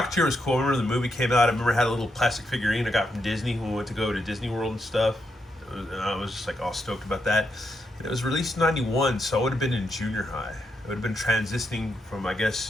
was cool. I remember the movie came out. I remember I had a little plastic figurine I got from Disney when we went to go to Disney World and stuff. And I was just all stoked about that. And it was released in '91, so I would have been in junior high. I would have been transitioning from, I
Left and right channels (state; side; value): normal; both; correlation 0.81